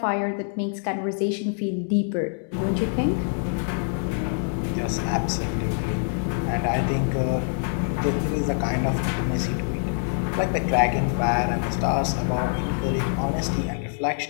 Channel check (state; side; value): silent; right; digital silence